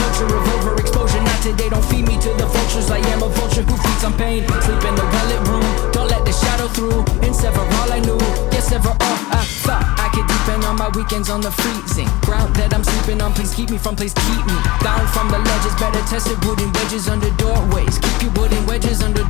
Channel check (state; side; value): quieter; right; 21.2 dB